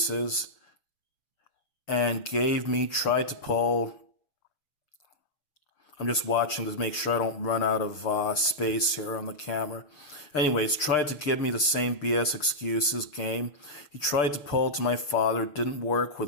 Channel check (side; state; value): right; late; 6.8 ms